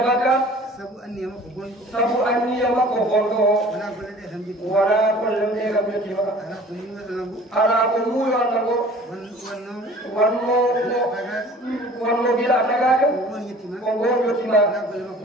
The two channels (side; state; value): both; normal; correlation 0.47